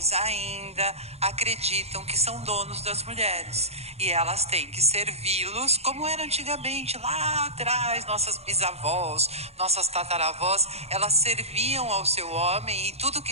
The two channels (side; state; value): left; late; 0.30 ms